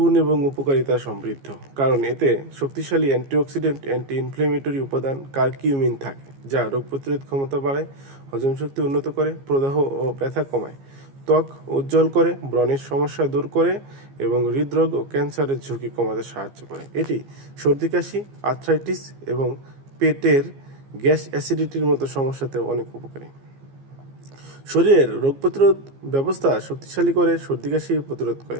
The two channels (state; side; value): late; left; 15 ms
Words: এবং উপকারিতা সমৃদ্ধ, কারণ এতে শক্তিশালী অ্যান্টিঅক্সিডেন্ট, অ্যান্টি ইনফ্লেমেটরি উপাদান কারকিউমিন থাকে, যা রোগ প্রতিরোধ ক্ষমতা বাড়ায়, হজম শক্তি উন্নত করে, প্রদাহ ও ব্যথা কমায়, ত্বক উজ্জ্বল করে, ব্রণের সমস্যা দূর করে এবং হৃদরোগ ও ক্যান্সারের ঝুঁকি কমাতে সাহায্য করে। এটি সর্দি কাশি, আর্থ্রাইটিস এবং পেটের গ্যাস অ্যাসিডিটির মতো সমস্যাতে অনেক উপকারী। শরীরের রোগ প্রতিরোধ ব্যবস্থা শক্তিশালী করে, সর্দি কাশি প্রতিরোধ করে,